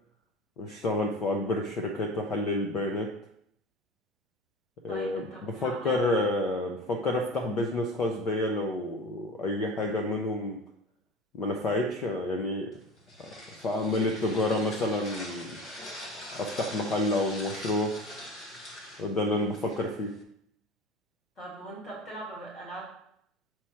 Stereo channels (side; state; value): both; normal; correlation 0.35